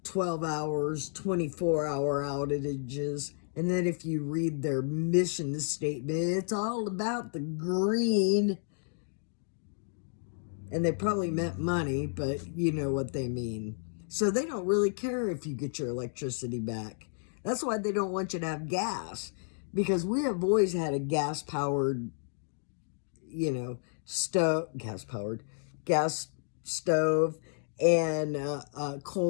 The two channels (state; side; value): silent; right; digital silence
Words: 12 hours, 24-hour outages. And then if you read their mission statement, it's all about the green. And they probably meant money, but you know what they mean. So they don't really care if you get your electricity back. That's why they don't want you to have gas. Because we have always had a gas-powered, gas stove, and not a